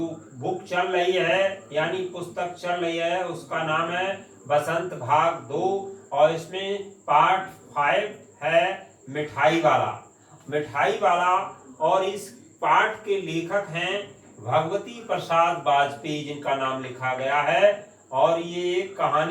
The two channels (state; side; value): identical; both; correlation 1.00